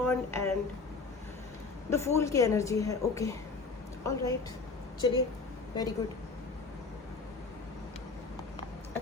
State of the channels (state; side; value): quieter; right; 4.1 dB